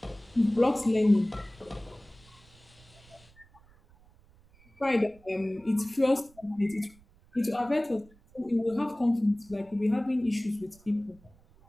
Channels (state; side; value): noise; right; rumble, 27 dB below the sound